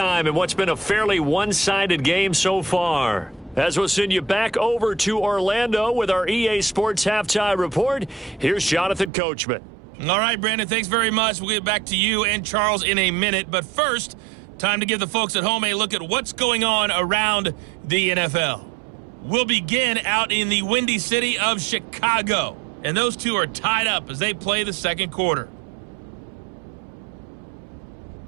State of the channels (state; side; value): drops out; left; at 9.1 s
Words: in what's been a fairly one-sided game so far. As we'll send you back over to Orlando with our EA Sports Halftime Report, here's Jonathan Coachman. All right, Brandon, thanks very much. We'll get back to you and Charles in a minute. But first, time to give the folks at home a look at what's going on around the NFL. We'll begin out in the windy city of Chicago. And those two are tied up as they play the second quarter.